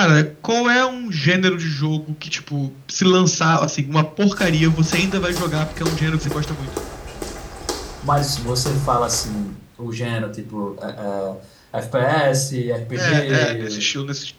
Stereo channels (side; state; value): both; identical; correlation 1.00